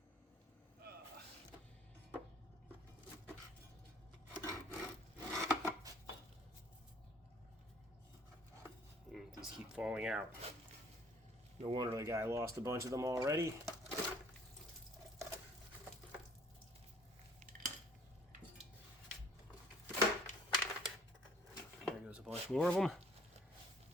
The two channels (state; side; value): normal; both; correlation 0.57